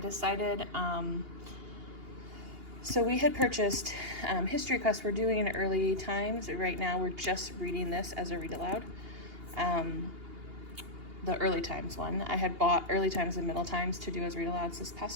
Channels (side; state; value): left; late; 2.8 ms